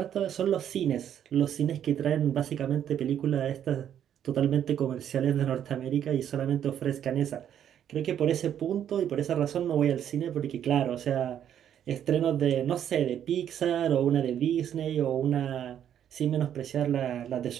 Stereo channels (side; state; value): left; quieter; 9.8 dB